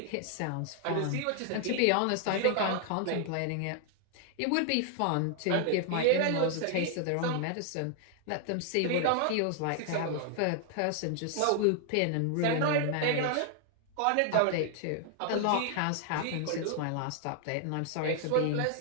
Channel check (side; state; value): both; different; correlation 0.00